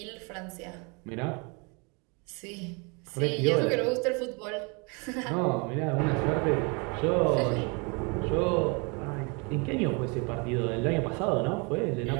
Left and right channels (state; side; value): quieter; left; 31.6 dB